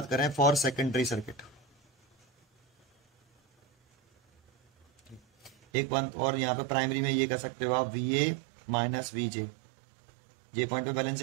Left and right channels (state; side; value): drops out; left; at 5.6 s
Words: करें, फॉर सेकेंडरी सर्किट एक बात और, यहाँ पे प्राइमरी में ये कह सकते हो आप VA minus VJ, J point पे